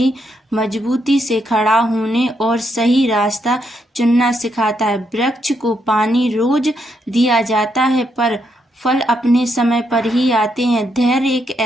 मजबूती से खड़ा होने और सही रास्ता चुनना सिखाता है। वृक्ष को पानी रोज दिया जाता है पर फल अपने समय पर ही आते हैं। धैर्य एक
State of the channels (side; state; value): both; normal; correlation 0.78